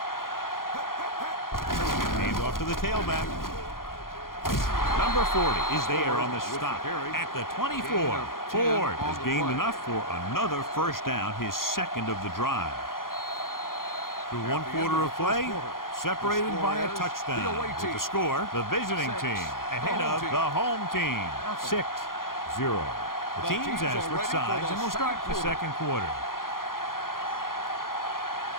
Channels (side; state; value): right; late; 0.91 ms